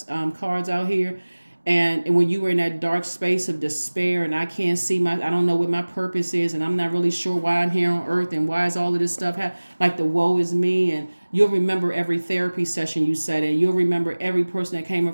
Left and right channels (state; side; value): inverted; both; correlation -1.00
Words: cards out here. And when you were in that dark space of despair, and I can't see I don't know what my purpose is, and I'm not really sure why I'm here on earth, and why is all of this stuff like the woe is me. And you'll remember every therapy session you sat in. You'll remember every person that came